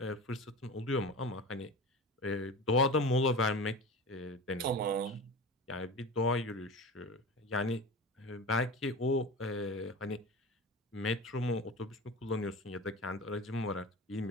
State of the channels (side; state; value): both; normal; correlation 0.31